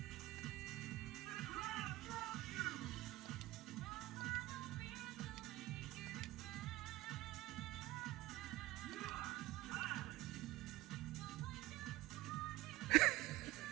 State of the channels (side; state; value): left; quieter; 17.6 dB